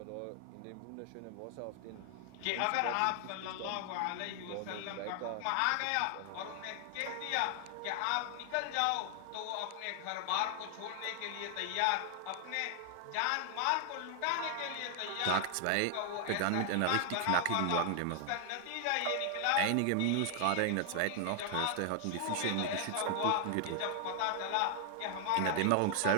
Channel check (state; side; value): different; both; correlation 0.00